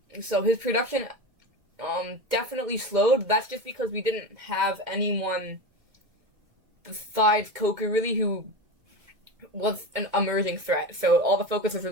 So his production definitely slowed. That's just because we didn't have anyone besides Coker really who was an emerging threat. So all the focus was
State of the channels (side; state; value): left; late; 2.2 ms